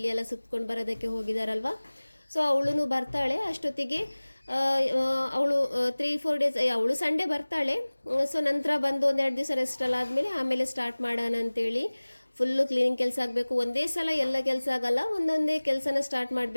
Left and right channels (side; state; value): both; inverted; correlation -1.00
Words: ಎಲ್ಲ ಸುತ್ಕೊಂಡು ಬರೋದಕ್ಕೆ ಹೋಗಿದ್ದಾರಲ್ವ. ಸೊ ಅವಳು ಬರ್ತಾಳೆ. ಅಷ್ಟೊತ್ತಿಗೆ ಅವಳು 3-4 ಡೇಸ್, ಅವಳು ಸಂಡೇ ಬರ್ತಾಳೆ. ಸೊ ನಂತರ ಬಂದು 1-2 ದಿವಸ ರೆಸ್ಟ್ ಎಲ್ಲ ಆದಮೇಲೆ ಆಮೇಲೆ ಸ್ಟಾರ್ಟ್ ಮಾಡೋಣ ಅಂತೇಳಿ. ಫುಲ್ಲು ಕ್ಲೀನಿಂಗ್ ಕೆಲಸ ಆಗಬೇಕು, ಒಂದೇ ಸಲ ಎಲ್ಲ ಕೆಲಸ ಆಗಲ್ಲ, ಒಂದೊಂದೇ ಕೆಲಸನ ಸ್ಟಾರ್ಟ್